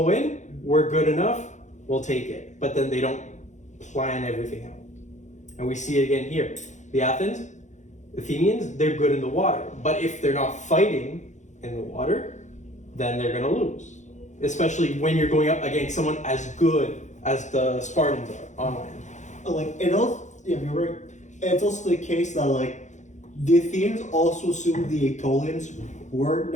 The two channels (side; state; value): right; late; 0.35 ms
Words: in, we're good enough, we'll take it. But then they don't plan everything out. And we see it again here. The Athenians, they're good in the water. But if they're not fighting in the water, then they're going to lose. Especially when you're going up against someone as good as the Spartans are on land. You're right. It's also the case that the Athenians also assumed the Aetolians weren't